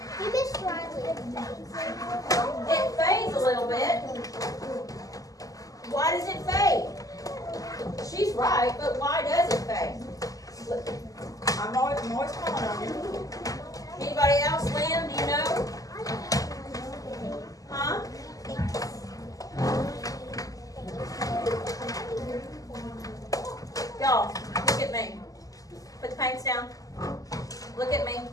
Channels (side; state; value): right; late; 0.17 ms